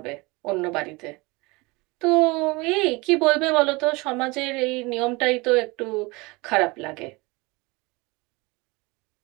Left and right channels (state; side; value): quieter; left; 24.8 dB